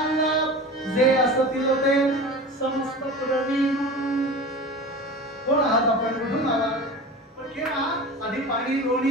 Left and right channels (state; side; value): normal; both; correlation 0.33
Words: जे असतील ते समस्त प्रवीण. कोण आहात आपण, कुठून आला? पण केव्हा? आधी पाणी